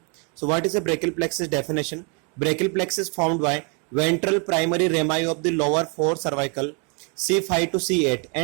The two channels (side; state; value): left; quieter; 35.4 dB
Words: So what is a brachial plexus definition? Brachial plexus formed by ventral primary rami of the lower four cervical C5 to C8